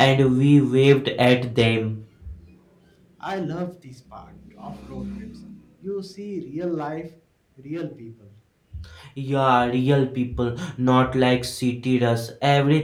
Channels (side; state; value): both; identical; correlation 1.00